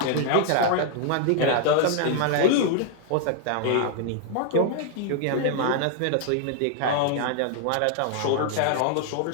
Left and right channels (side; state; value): both; different; correlation 0.00